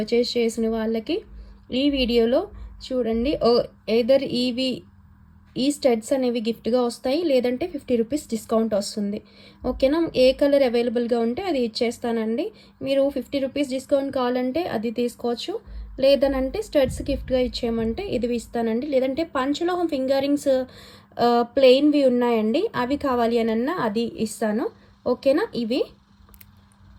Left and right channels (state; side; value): identical; both; correlation 1.00